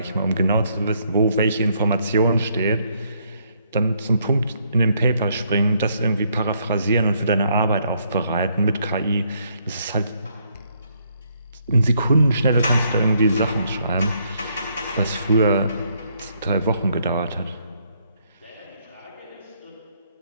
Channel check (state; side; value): inverted; both; correlation -0.71